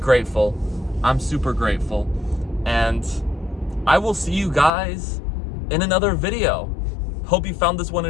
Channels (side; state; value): right; drops out; at 4.7 s